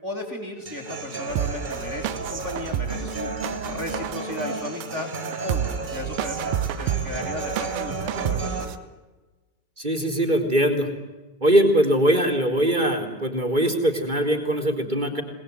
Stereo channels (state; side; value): late; left; 2.3 ms